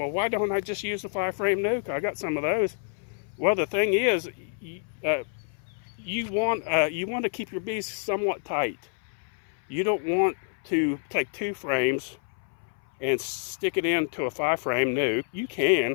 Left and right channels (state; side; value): silent; right; 60 dB below the other